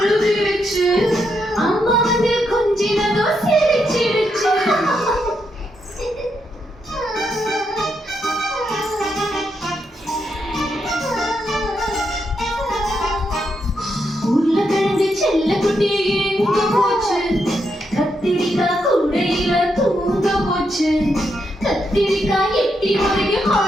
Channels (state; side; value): normal; both; correlation 0.81